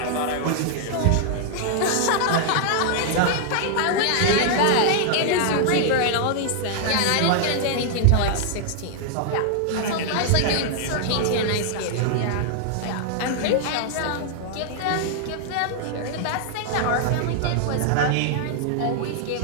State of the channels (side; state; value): both; different; correlation 0.00